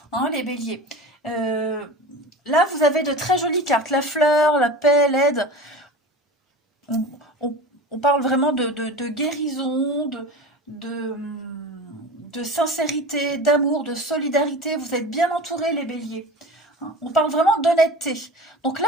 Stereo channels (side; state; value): both; normal; correlation 0.33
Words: hein, les béliers. Là, vous avez de très jolies cartes. La fleur, la paix, l'aide. On, on parle vraiment de guérison, de, de sincérité, d'amour, de solidarité. Vous êtes bien entourés, les béliers. On parle vraiment d'honnêteté. Donc là,